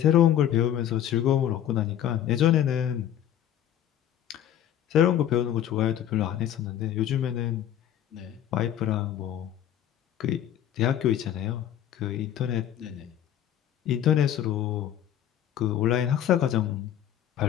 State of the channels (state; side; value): quieter; right; 10.9 dB